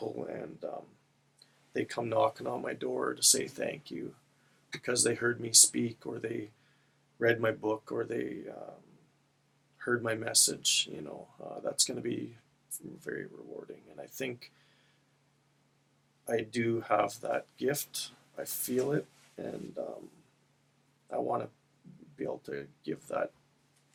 and they come knocking on my door to say thank you because they heard me speak, or they read my book, or they heard my message. That's going to be very rewarding. And I think I do have that gift. I feel it, and I want to be able to give that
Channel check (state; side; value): identical; both; correlation 1.00